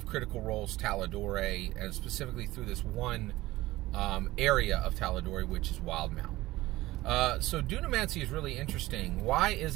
Critical Role's Tal'Dorei, and specifically through this one area of Tal'Dorei, which is Wildemount. So Dunamancy is really interesting. Why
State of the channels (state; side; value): quieter; left; 17.9 dB